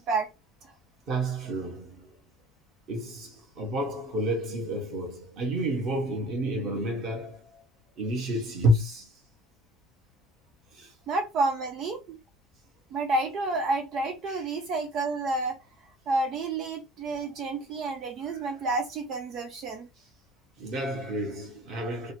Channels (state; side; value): normal; both; correlation 0.49